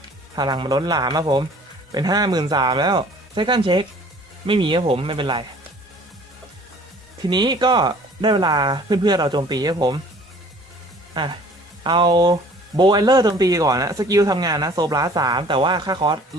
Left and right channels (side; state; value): both; normal; correlation 0.51